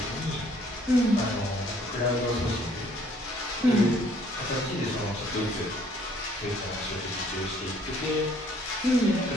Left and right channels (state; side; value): normal; both; correlation 0.61